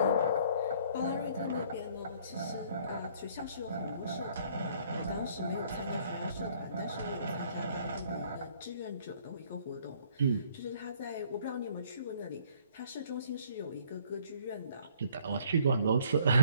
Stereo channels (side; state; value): both; inverted; correlation -0.60